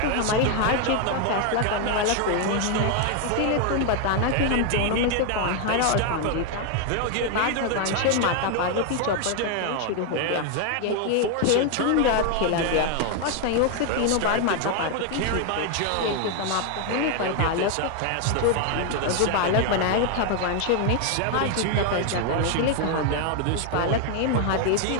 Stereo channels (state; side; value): different; both; correlation 0.01